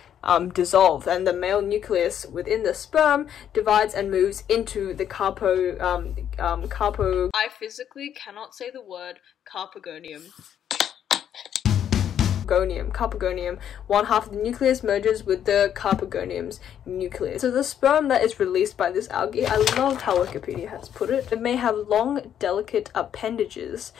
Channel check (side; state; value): right; quieter; 9.6 dB